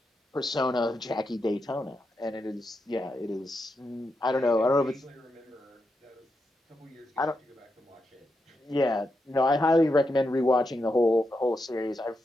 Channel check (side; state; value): both; normal; correlation 0.85